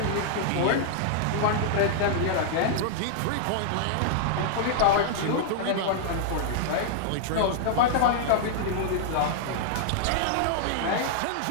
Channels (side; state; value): both; different; correlation -0.01